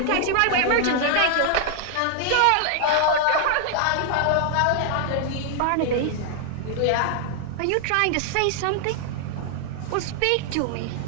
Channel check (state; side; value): different; both; correlation 0.00